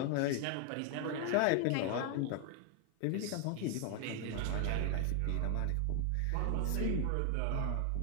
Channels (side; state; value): both; different; correlation 0.00